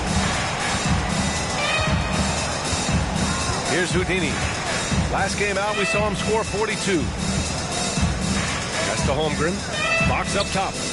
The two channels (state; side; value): identical; both; correlation 1.00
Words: Here's Houdini. Last game out, we saw him score 42. That's to Holmgren. Fox up top.